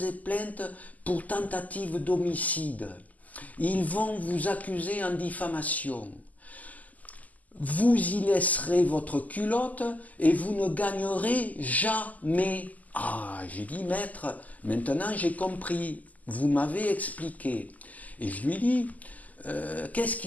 plainte pour tentative d'homicide, ils vont vous accuser en diffamation. vous y laisserez votre culotte et vous ne gagnerez jamais. Ah, j'ai dit, maître, maintenant j'ai compris, vous m'avez expliqué. Et je lui dis, qu'est-ce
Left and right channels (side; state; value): right; late; 0.078 ms